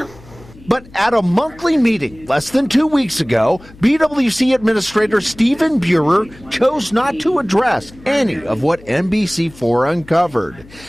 But at a monthly meeting less than 2 weeks ago, BWC Administrator Stephen Buehrer chose not to address any of what NBC4 uncovered.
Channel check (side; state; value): left; noise; hum, 22 dB below the sound